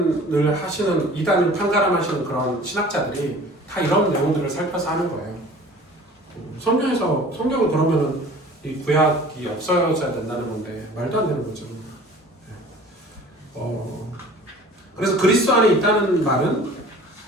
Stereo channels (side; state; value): both; normal; correlation 0.45